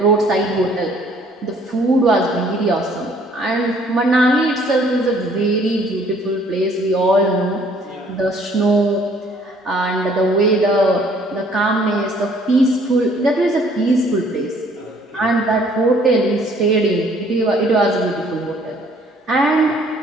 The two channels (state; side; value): normal; both; correlation 0.60